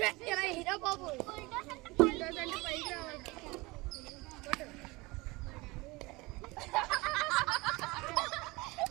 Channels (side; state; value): left; quieter; 23.1 dB